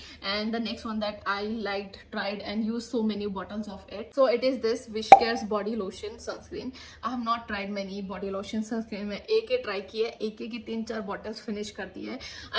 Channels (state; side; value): identical; both; correlation 1.00